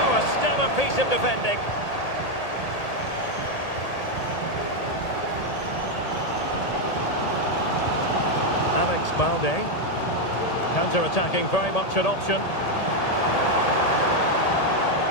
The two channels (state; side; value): late; right; 1.8 ms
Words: a stellar piece of defending. Alex Balde. Counter-attacking, very much an option.